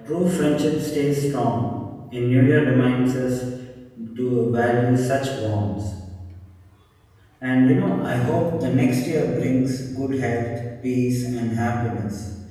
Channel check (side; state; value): both; identical; correlation 1.00